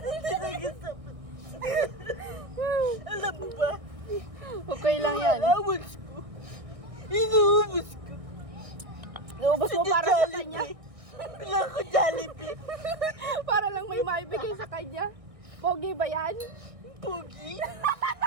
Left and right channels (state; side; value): late; left; 1.6 ms